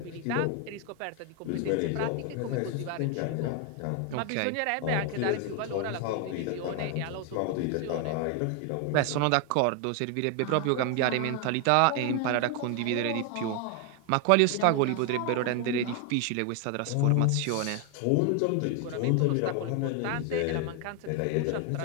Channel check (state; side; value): different; both; correlation 0.01